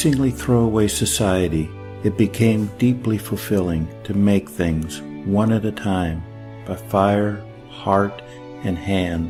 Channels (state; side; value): identical; both; correlation 1.00